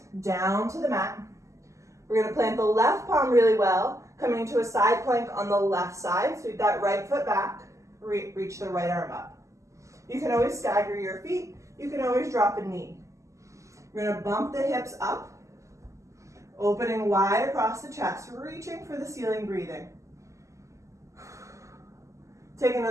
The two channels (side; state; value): left; late; 0.15 ms